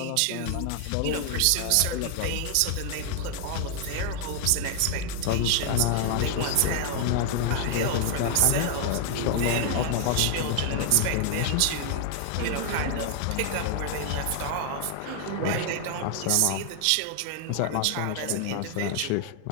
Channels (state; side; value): different; both; correlation 0.00